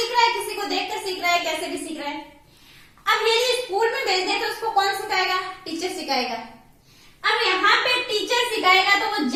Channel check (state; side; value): identical; both; correlation 1.00